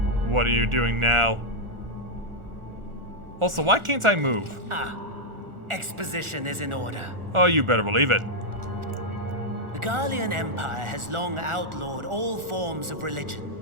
What are you doing now? Also, why can't I move? Exposition is in order. Oh, you better believe it. The Garlean Empire has long outlawed all forms of religion.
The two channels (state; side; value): late; left; 1.4 ms